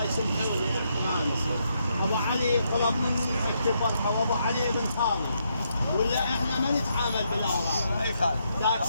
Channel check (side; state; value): both; inverted; correlation -0.78